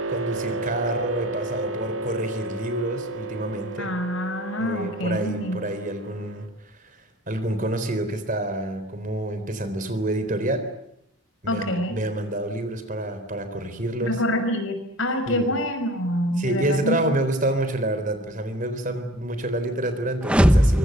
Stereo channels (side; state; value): both; normal; correlation 0.45